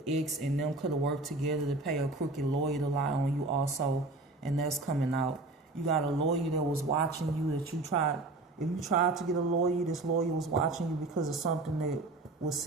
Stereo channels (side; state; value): left; quieter; 3.1 dB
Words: ex and them could have worked together to pay a crooked lawyer to lie on you also, and that's coming out. You got a lawyer that was watching you that you tried. If you tried to get a lawyer, this lawyer was watching you because of something that was